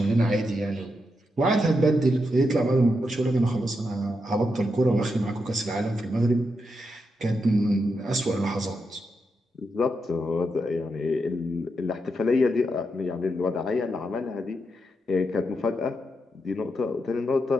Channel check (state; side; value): normal; both; correlation 0.84